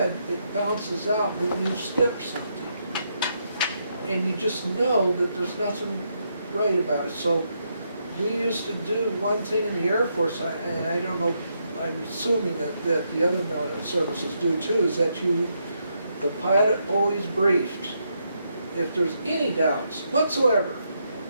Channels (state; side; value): inverted; both; correlation -0.79